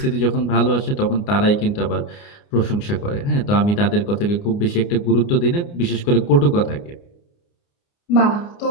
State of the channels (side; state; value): right; late; 29 ms